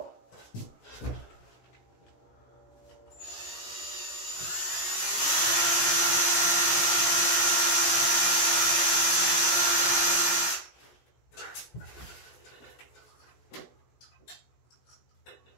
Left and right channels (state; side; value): late; right; 17 ms